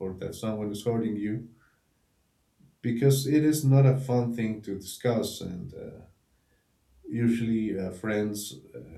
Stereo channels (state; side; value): identical; both; correlation 1.00